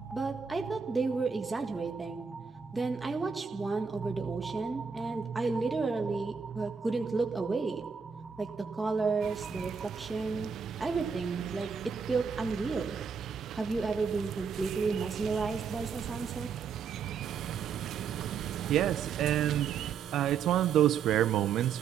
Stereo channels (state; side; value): quieter; left; 6.2 dB